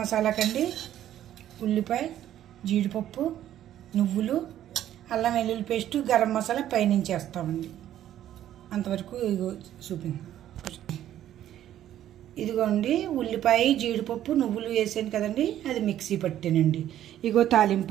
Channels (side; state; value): left; quieter; 11.9 dB